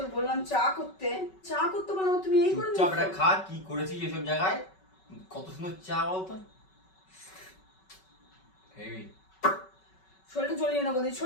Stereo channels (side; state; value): right; late; 5.3 ms